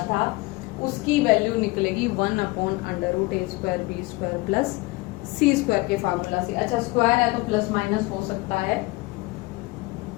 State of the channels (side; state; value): right; quieter; 22.7 dB